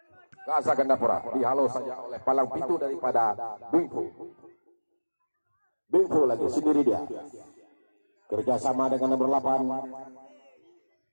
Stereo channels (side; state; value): both; inverted; correlation -1.00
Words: Gaza Gandapura dihalau saja oleh palang pintu daripada Bingfu. Bingfu lagi sendiri dia. Kerjasama dengan nomor 8.